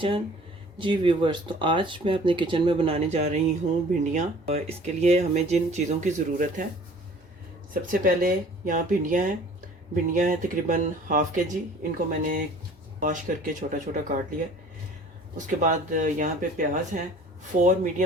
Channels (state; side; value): normal; both; correlation 0.50